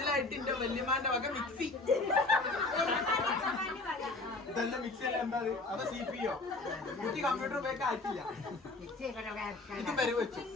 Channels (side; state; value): right; quieter; 3.2 dB